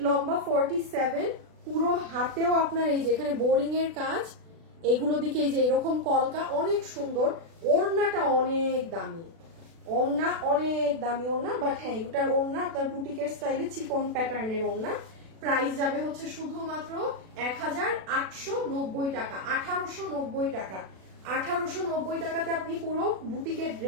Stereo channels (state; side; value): late; left; 36 ms